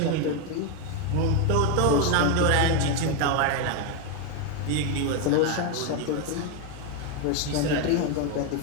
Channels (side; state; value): both; different; correlation 0.02